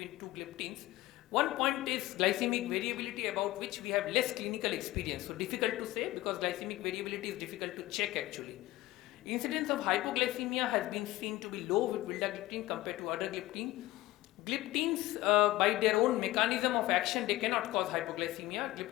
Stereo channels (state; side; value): quieter; right; 17.6 dB